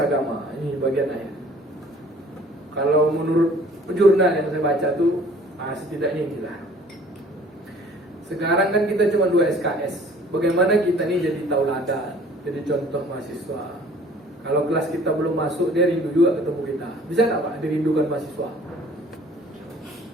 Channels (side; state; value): both; normal; correlation 0.53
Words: Ini bagian akhir. Kalau menurut jurnal yang saya baca tuh setidaknya inilah. Sekarang kan kita cuma 2 SKS. Bagaimana kita ini jadi tauladan, jadi contoh mahasiswa. Kalau kelas kita belum masuk, dia rindu juga ketemu kita. Bisa nggak Pak dirindukan mahasiswa?